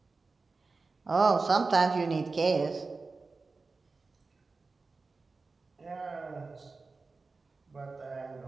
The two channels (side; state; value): left; quieter; 4.0 dB